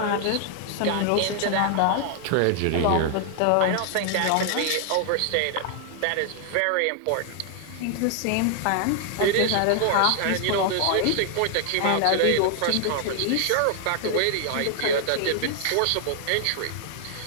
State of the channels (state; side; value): different; both; correlation 0.00